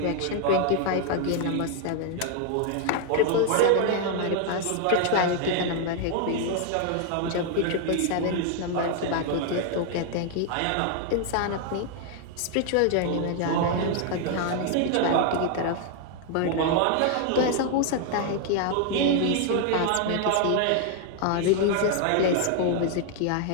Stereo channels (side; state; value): both; different; correlation 0.00